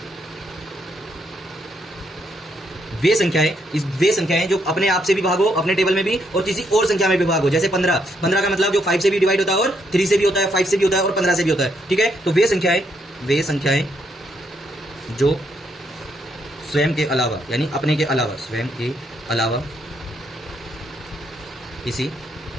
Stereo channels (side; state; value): both; normal; correlation 0.75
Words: वे संख्याएं जो अपने आप से भी भागो, अपने टेबल में भी, और किसी और संख्या में भी भागो। जैसे 15 का मतलब जो 5 से भी डिवाइड होता है और 3 से भी होता है, 5 से भी होता है और 15 से भी होता है, ठीक है। तो वे संख्याएं जो स्वयं के अलावा, यानी अपने के अलावा, स्वयं के अलावा किसी